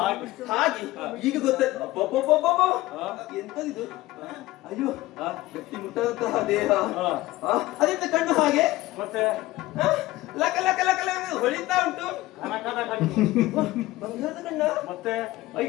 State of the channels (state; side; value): quieter; right; 17.9 dB